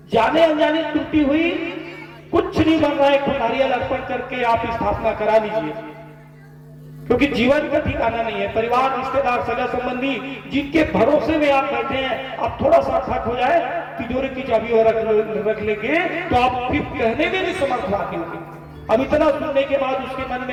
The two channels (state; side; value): identical; both; correlation 1.00